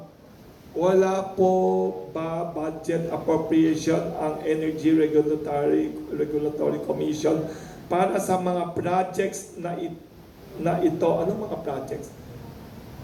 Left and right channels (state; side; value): identical; both; correlation 1.00